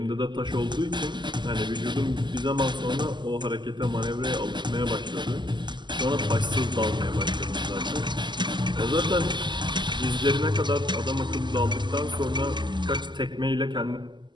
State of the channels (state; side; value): late; left; 0.22 ms